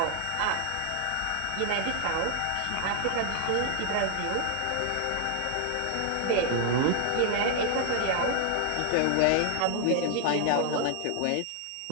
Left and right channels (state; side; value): different; both; correlation 0.00